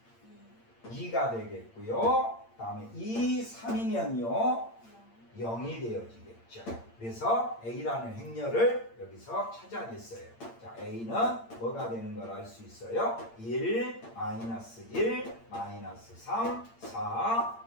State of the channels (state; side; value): late; right; 8.8 ms